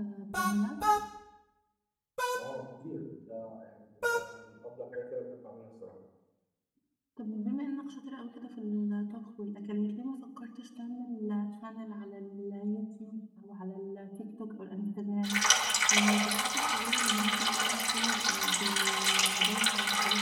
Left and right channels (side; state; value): both; identical; correlation 1.00